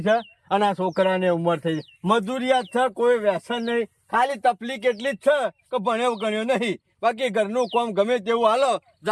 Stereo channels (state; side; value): identical; both; correlation 1.00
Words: છે અને આ છોકરાને ઉંમર થઈ ગઈ. મજૂરિયાત છે, કોઈ વ્યસન નહીં. ખાલી તકલીફ એટલી જ છે કે ભણ્યો ગણ્યો નહીં. બાકી ઘરનું કામ ગમે તેવું હાલો,